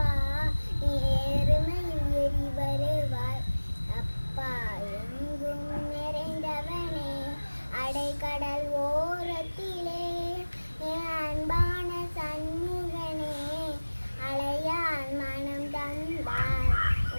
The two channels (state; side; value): inverted; both; correlation -1.00